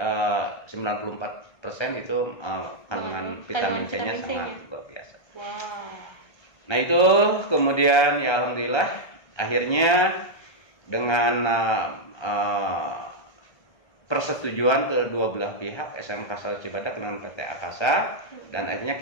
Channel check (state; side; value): late; right; 1.3 ms